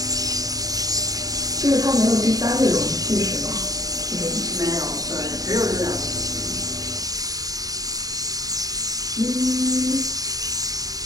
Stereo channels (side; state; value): left; late; 0.18 ms